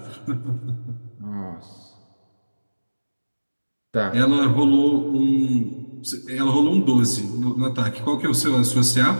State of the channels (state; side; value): inverted; both; correlation -1.00